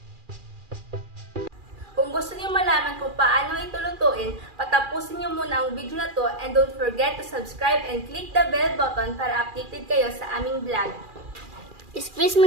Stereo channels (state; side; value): late; left; 2.4 ms